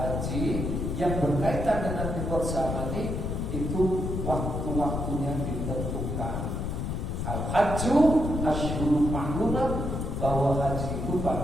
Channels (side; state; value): left; noise; rumble, 2 dB below the sound